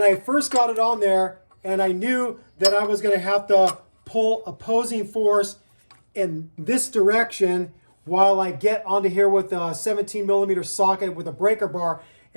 I first got it on there and I knew that I was going to have to pull opposing force in this direction while I get onto here with a 17 millimeter socket with a breaker bar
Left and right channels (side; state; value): both; inverted; correlation -1.00